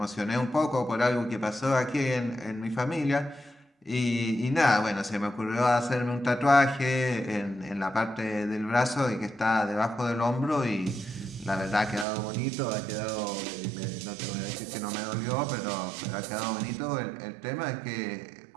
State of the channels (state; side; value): drops out; left; at 12.1 s